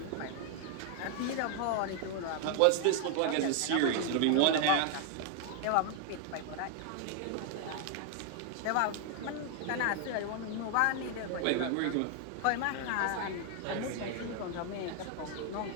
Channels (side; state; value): both; different; correlation 0.00